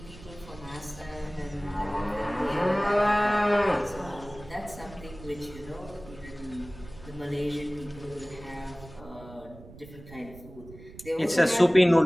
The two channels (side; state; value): right; noise; rumble, 18 dB below the sound